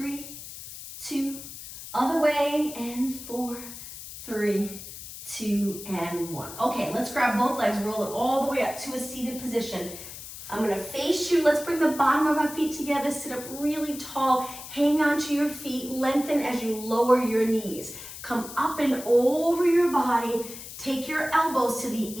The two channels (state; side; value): noise; left; hiss, 12 dB below the sound